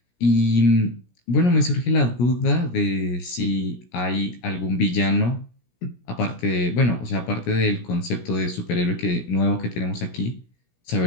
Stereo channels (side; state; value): right; late; 17 ms